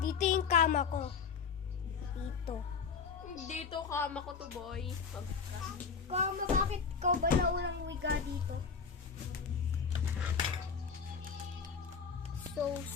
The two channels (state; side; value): quieter; right; 5.9 dB